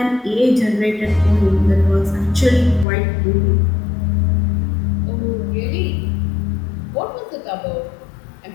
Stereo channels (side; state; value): right; drops out; at 2.9 s